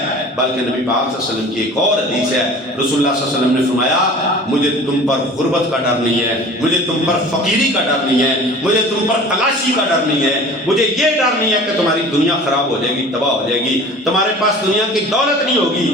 بلکہ نبی پاک صلی اللہ علیہ وسلم کی ایک اور حدیث ہے، رسول اللہ صلی اللہ علیہ وسلم نے فرمایا مجھے تم پر غربت کا ڈر نہیں ہے، مجھے تم پر فقیری کا ڈر نہیں ہے، مجھے تم پر تلاشی کا ڈر نہیں ہے، مجھے یہ ڈر نہیں ہے کہ تمہاری دنیا خراب ہو جائے گی، تباہ ہو جائے گی، تمہارے پاس دنیا کی دولت نہیں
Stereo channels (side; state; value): both; normal; correlation 0.42